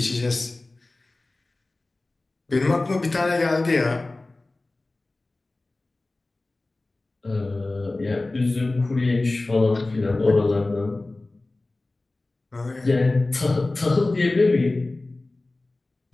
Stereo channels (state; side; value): quieter; right; 3.0 dB